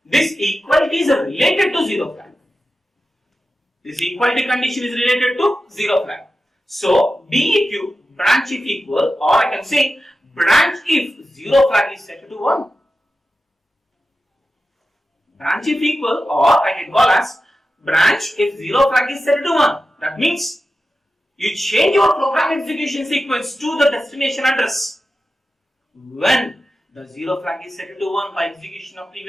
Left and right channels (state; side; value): normal; both; correlation 0.92